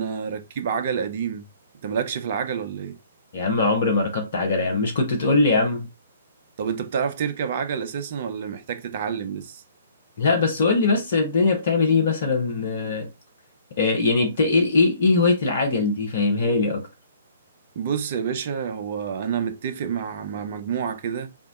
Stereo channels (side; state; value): both; inverted; correlation -0.57